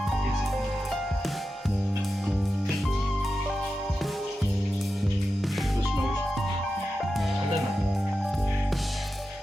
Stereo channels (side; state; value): both; normal; correlation 0.91